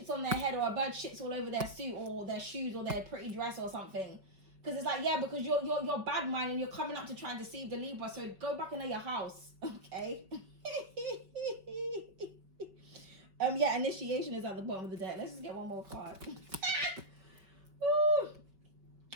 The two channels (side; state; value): left; late; 5.4 ms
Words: on their head, or a bird shits all over their suit or their shoes or their pretty dress or something. Because it's like, yeah, because you're bad mind and you're coming up to try and deceive the Libra. So go back into your house, okay? Yeah, initiation is at the bottom of the deck. Let's just get one more card.